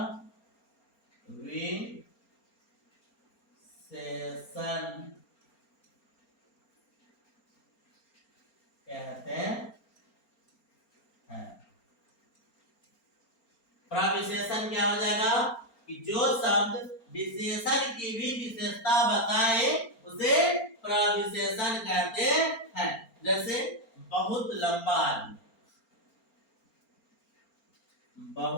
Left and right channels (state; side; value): late; right; 4.3 ms